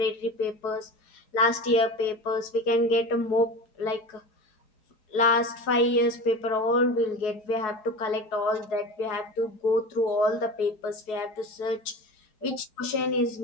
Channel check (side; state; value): right; late; 4.7 ms